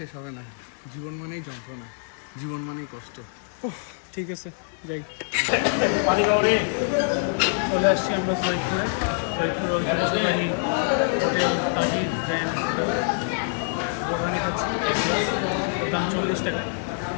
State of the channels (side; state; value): right; silent; digital silence